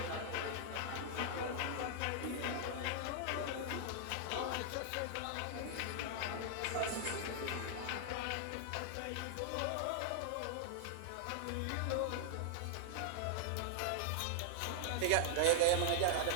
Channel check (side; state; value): both; different; correlation -0.01